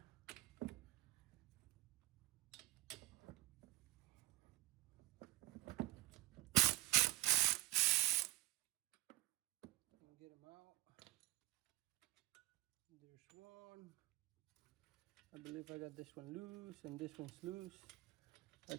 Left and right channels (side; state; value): left; quieter; 17.6 dB